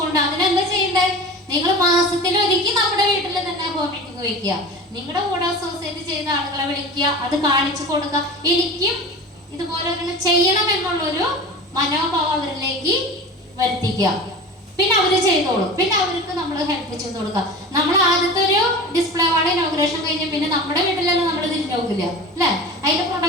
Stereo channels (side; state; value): both; normal; correlation 0.34